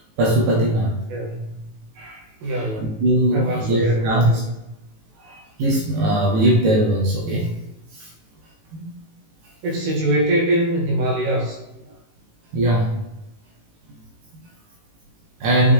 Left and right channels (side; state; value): left; late; 18 ms